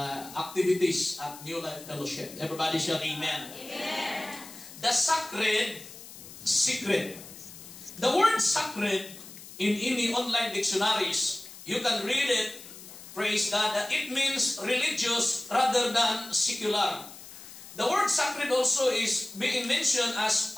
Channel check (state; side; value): noise; left; hiss, 16 dB below the sound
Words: at New Life Fellowship. Everybody shall amen. Amen. The sacred secret. The word sacred in any online dictionaries, you can read it, praise God, that it means religious rather than secular. The word sacred also is being mentioned as